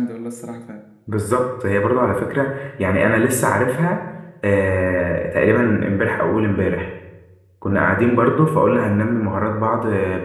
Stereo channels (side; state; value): both; identical; correlation 1.00